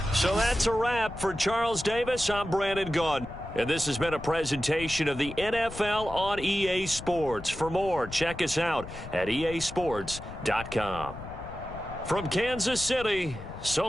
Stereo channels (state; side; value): noise; left; rumble, 12 dB below the sound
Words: So that's a wrap for Charles Davis. I'm Brandon Gaudin. And this has been a presentation of the NFL on EA Sports. For more, check us out at easports.com. From Kansas City, so